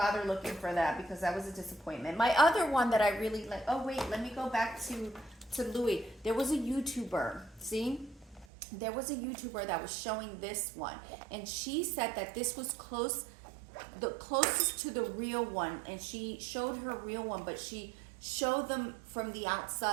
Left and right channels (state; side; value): drops out; left; at 8.5 s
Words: looking for that because that was a disappointment. My other one that I really like. Oh wait, let me go back to Louis. There was a YouTuber. See, there was a YouTuber that was showing this one, and she said that this was the closest to the real one, and she showed her real one, but she showed them from the